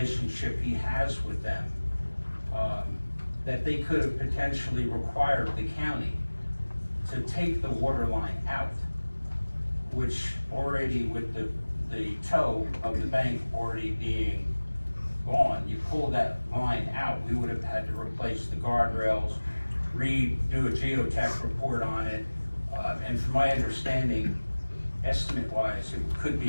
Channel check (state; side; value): inverted; both; correlation -1.00